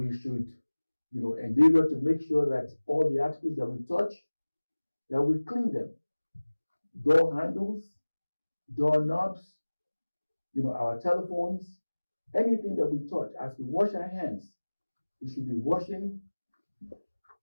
should, endeavor to make sure that all the articles that we touch, that we clean them. Door handles, door knobs, our telephones, anything that we touch. As we wash our hands, we should be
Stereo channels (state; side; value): inverted; both; correlation -1.00